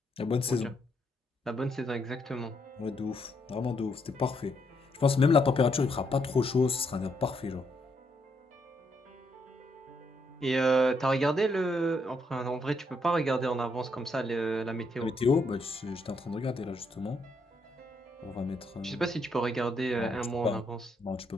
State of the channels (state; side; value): normal; both; correlation 0.76